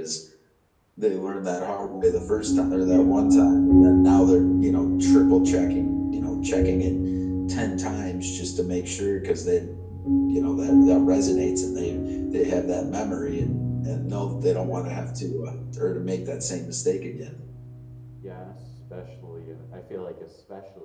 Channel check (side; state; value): both; identical; correlation 1.00